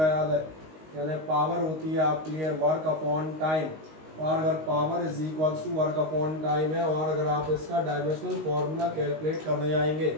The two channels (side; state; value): left; late; 19 ms